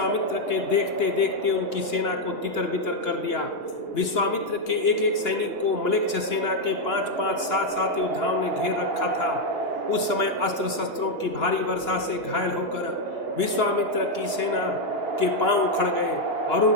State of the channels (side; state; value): right; late; 2.9 ms